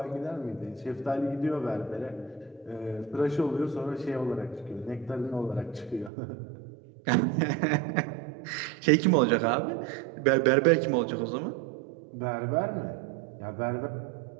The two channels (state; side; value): drops out; left; at 6.1 s